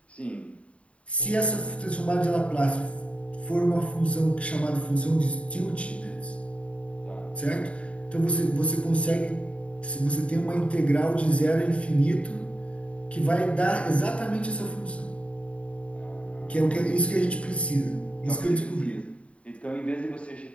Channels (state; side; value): late; right; 0.063 ms